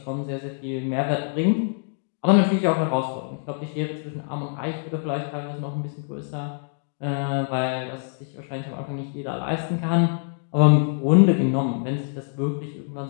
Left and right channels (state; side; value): silent; right; digital silence